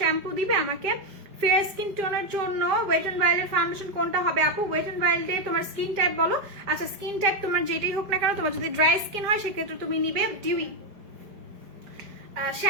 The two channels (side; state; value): left; late; 5.3 ms